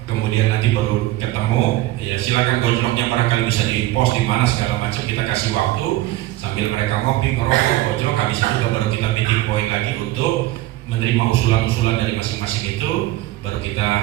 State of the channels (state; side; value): quieter; left; 16.5 dB